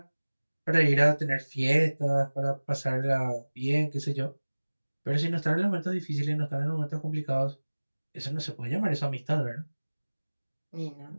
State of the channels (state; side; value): inverted; both; correlation -1.00